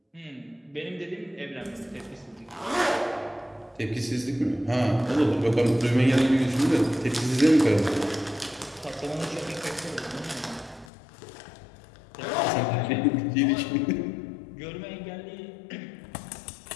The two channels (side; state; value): right; drops out; at 10.9 s